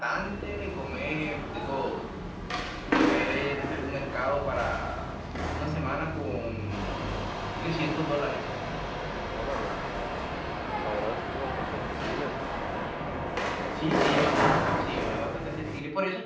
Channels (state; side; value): identical; both; correlation 1.00